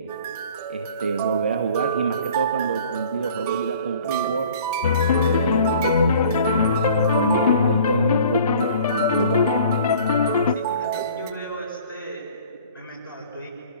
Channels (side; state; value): both; inverted; correlation -0.49